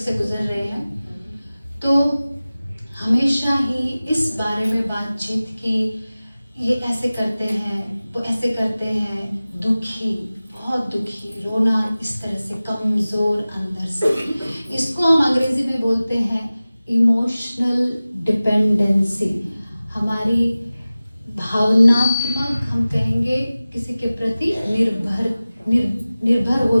गुजर रहे हैं। तो हमेशा ही इस बारे में बातचीत की, ये ऐसे करते हैं, वो ऐसे करते हैं, दुखी, बहुत दुखी, रोना, इस तरह से कमज़ोर अंदर से। इसको हम अंग्रेजी में बोलते हैं इमोशनल डिपेंडेंसी। हमारी भावनात्मक, हम कहेंगे किसी के प्रति निर्भर हो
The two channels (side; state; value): both; inverted; correlation -0.97